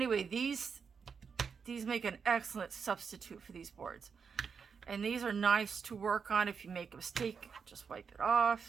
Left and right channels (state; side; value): quieter; left; 6.1 dB